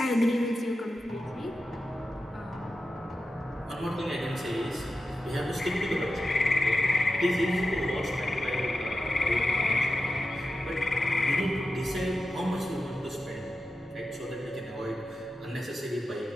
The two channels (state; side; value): normal; both; correlation 0.92